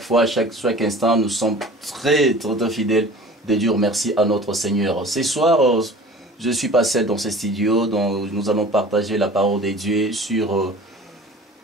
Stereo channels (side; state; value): both; normal; correlation 0.43